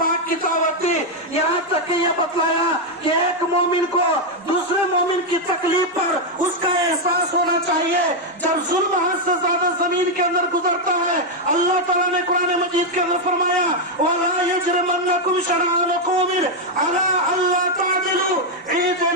की दावत दी। यहाँ तक कि यह बतलाया कि एक मोमिन को दूसरे मोमिन की तकलीफ पर उसका एहसास होना चाहिए। जब जुल्म हद से ज्यादा जमीन के अंदर गुजरता है, अल्लाह ताला ने कुरान मजीद के अंदर फरमाया वला यजरमन्नकुम शरआनु कौमिन अला अल्ला तादिलू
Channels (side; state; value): both; normal; correlation 0.01